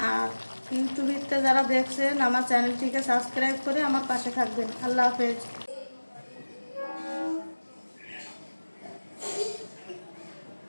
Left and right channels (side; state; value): both; inverted; correlation -1.00